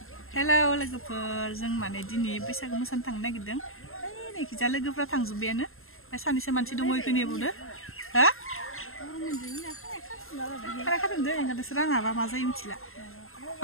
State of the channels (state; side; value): late; right; 0.61 ms